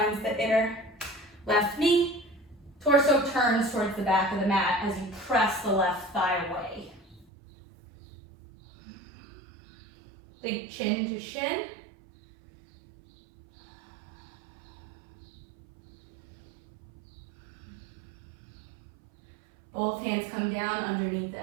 the inner left knee. Torso turns towards the back of the mat as you press the left thigh away. Big chin to shin. Both hands come down underneath the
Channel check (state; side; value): drops out; left; at 7.2 s